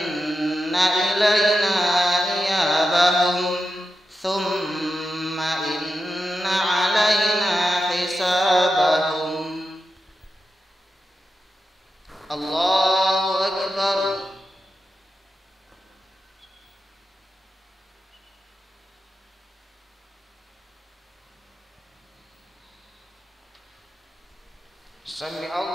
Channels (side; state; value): both; normal; correlation 0.89